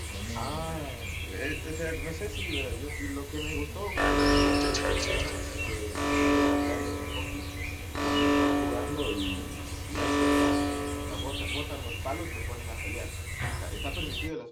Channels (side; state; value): both; identical; correlation 1.00